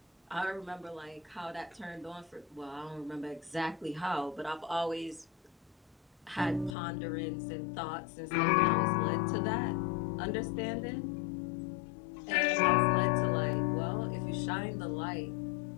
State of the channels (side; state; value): right; drops out; at 6.8 s